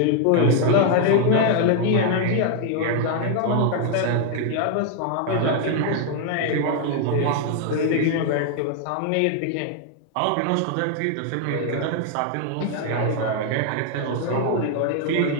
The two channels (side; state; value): both; different; correlation 0.00